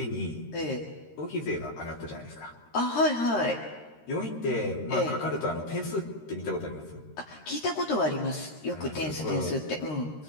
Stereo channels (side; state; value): right; late; 13 ms